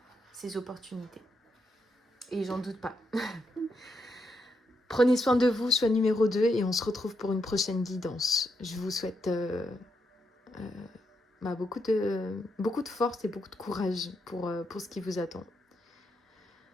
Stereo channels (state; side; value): normal; both; correlation 0.81